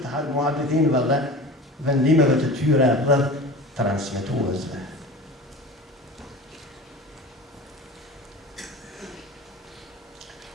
muhabbetinëve dhe vendimeve të tyre rreth transmetuesve.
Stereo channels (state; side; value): normal; both; correlation 0.35